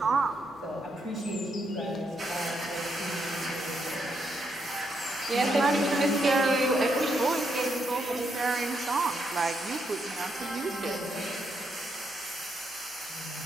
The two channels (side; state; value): both; normal; correlation 0.79